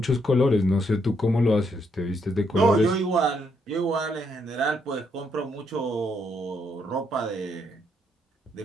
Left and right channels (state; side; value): normal; both; correlation 0.75